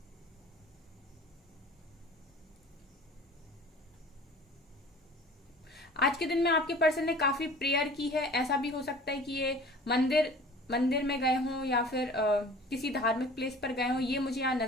आज के दिन में आपके पर्सन ने काफी प्रेयर की है। ऐसा भी हो सकता है कि ये मंदिर मंदिर में गए हों या फिर किसी धार्मिक प्लेस पर गए हों, ये मुझे यहाँ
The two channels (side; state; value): both; normal; correlation 0.44